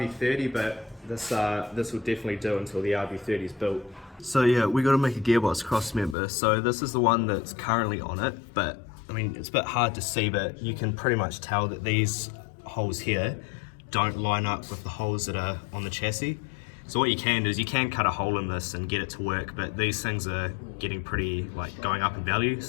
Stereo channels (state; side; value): drops out; right; at 6.2 s